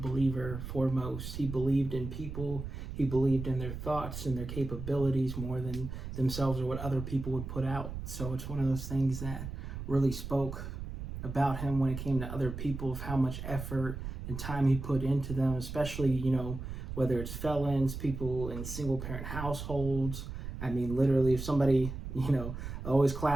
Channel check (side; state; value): right; noise; rumble, 7 dB below the sound